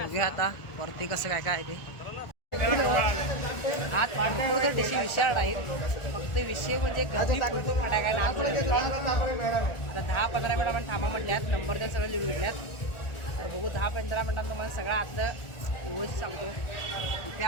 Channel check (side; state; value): right; late; 1.4 ms